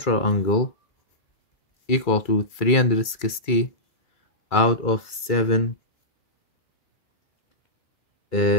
angle equal to 360 out of 7.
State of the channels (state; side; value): late; right; 2.3 ms